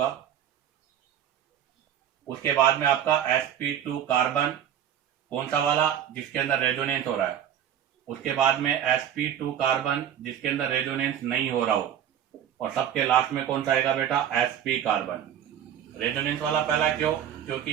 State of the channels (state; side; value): quieter; left; 9.9 dB